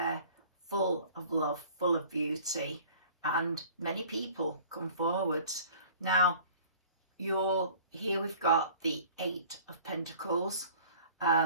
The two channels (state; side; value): inverted; both; correlation -0.48